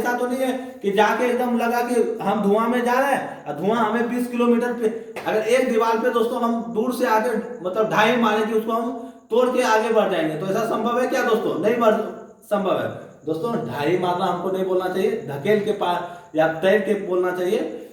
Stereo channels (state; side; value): identical; both; correlation 1.00